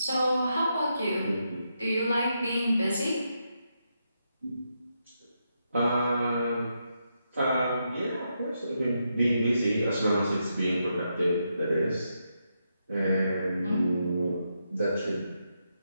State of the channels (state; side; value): inverted; both; correlation -0.83